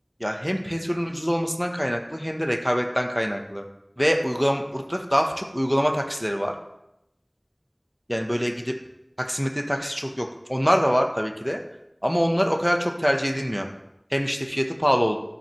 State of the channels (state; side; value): identical; both; correlation 1.00